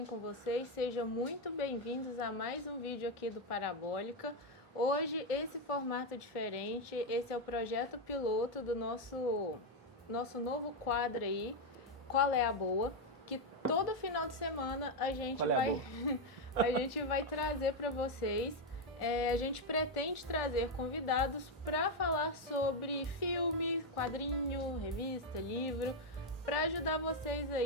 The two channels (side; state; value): both; normal; correlation 0.04